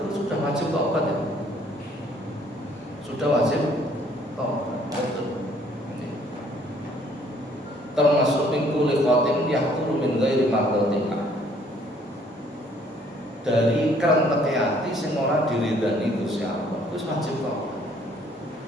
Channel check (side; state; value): both; normal; correlation 0.61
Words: sudah wajib taubat ya. Sudah wajib taubat. Betul. Termasuk min kulli qatin yahturu min ghairi mardatillah. Dari kerentek hati sing ora diridani Gusti Allah. Wis wajib taubat.